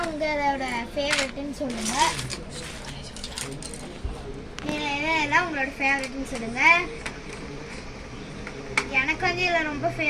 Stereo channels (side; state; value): both; identical; correlation 1.00